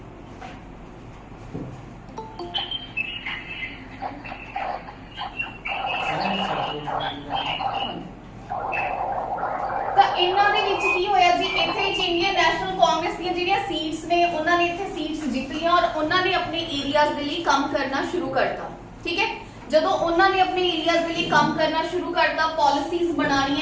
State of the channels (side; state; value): both; identical; correlation 1.00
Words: ਤਾਂ ਇਹਨਾਂ ਦੇ ਵਿੱਚ ਕੀ ਹੋਇਆ ਜੀ? ਇੱਥੇ ਇੰਡੀਅਨ ਨੈਸ਼ਨਲ ਕਾਂਗਰਸ ਦੀਆਂ ਜਿਹੜੀਆਂ ਸੀਟਸ ਨੇ ਉਹਨਾਂ ਨੇ ਇੱਥੇ ਸੀਟਸ ਜਿੱਤ ਲਈਆਂ ਔਰ ਉਹਨਾਂ ਨੇ ਆਪਣੇ ਏਰੀਆਜ਼ ਦੇ ਲਈ ਕੰਮ ਕਰਨਾ ਸ਼ੁਰੂ ਕਰਤਾ। ਠੀਕ ਹੈ, ਜਦੋਂ ਉਹਨਾਂ ਨੇ ਆਪਣੇ ਏਰੀਆਜ਼ ਦੇ ਲਈ ਕੰਮ ਕਰਨਾ ਸ਼ੁਰੂ ਕਰਤਾ, ਪਾਲਿਸੀਜ਼